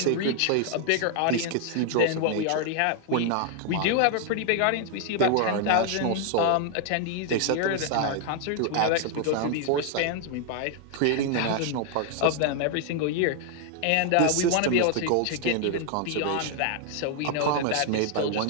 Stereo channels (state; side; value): different; both; correlation 0.00